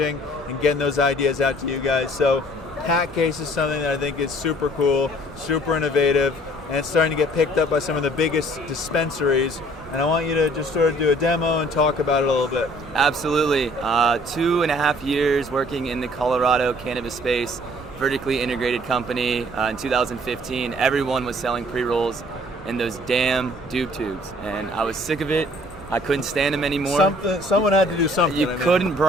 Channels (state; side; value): noise; right; rumble, 19 dB below the sound